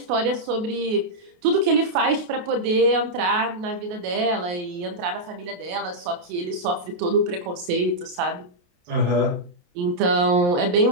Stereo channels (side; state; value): left; late; 28 ms